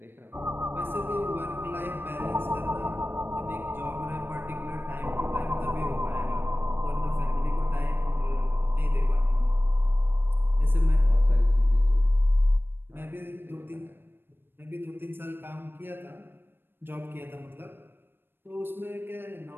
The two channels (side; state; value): left; late; 0.10 ms